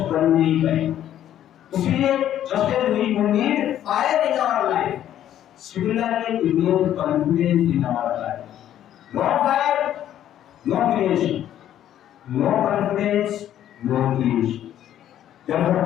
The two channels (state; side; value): quieter; right; 11.3 dB